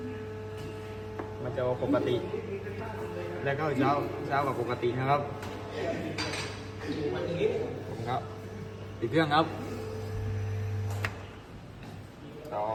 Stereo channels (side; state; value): both; identical; correlation 1.00